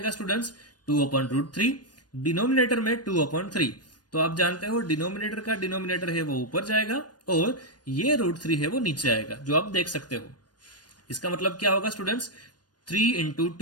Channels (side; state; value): right; late; 0.69 ms